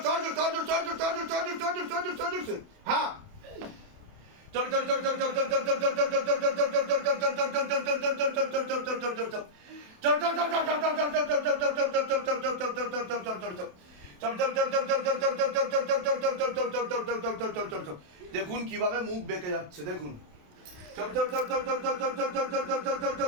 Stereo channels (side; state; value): left; late; 28 ms